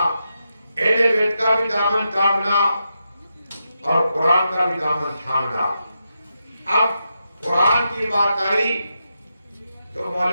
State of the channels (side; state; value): both; inverted; correlation -0.86